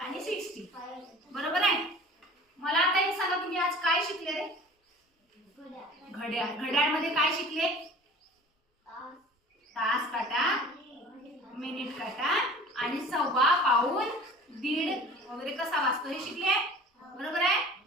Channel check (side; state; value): both; normal; correlation 0.43